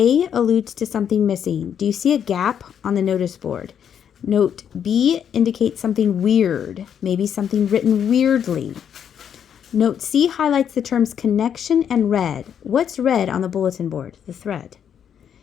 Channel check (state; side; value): quieter; right; 8.5 dB